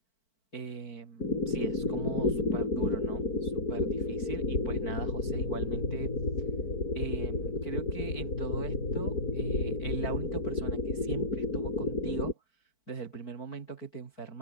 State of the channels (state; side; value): late; right; 4.5 ms